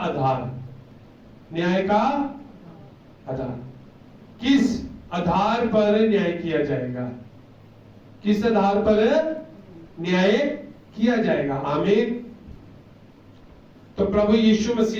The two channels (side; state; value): both; identical; correlation 1.00